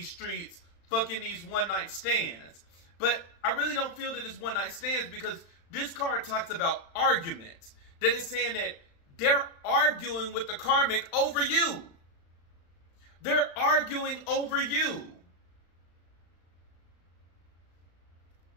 streets, fucking these one-night stands. But I really don't feel that it's one-night stands, because this card talks about arguments. That is saying that they're arguing with the karmic over you. They're arguing over you.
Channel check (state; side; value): late; right; 35 ms